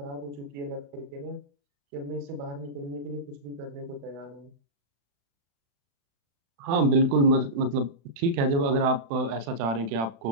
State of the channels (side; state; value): left; late; 35 ms